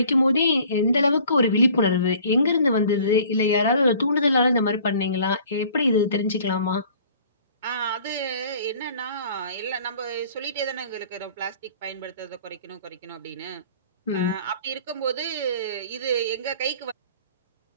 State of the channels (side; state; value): both; inverted; correlation -0.51